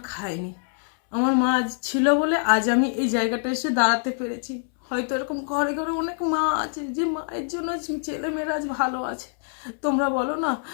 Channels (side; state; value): right; silent; 62 dB below the other